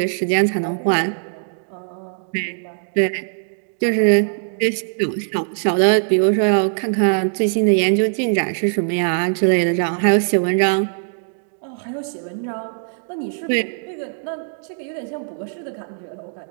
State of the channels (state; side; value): silent; left; digital silence